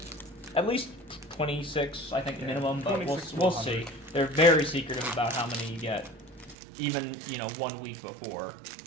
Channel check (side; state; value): left; drops out; at 6.6 s